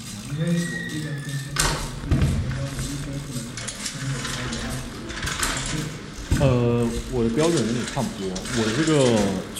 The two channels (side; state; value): both; identical; correlation 1.00